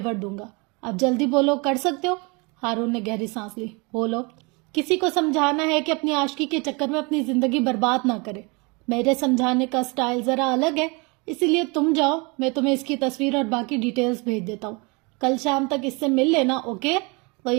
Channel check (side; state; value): left; quieter; 29.0 dB